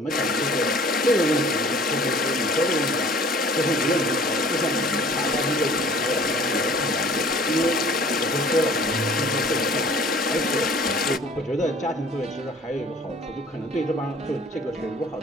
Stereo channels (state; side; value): normal; both; correlation 0.51